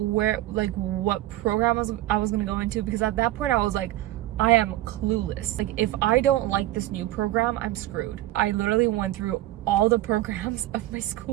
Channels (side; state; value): left; quieter; 15.5 dB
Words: program I was gonna go into, because at that point I was like, I am clueless. Like, if I don't like this new program, I'm screwed. I literally went through all the programs of my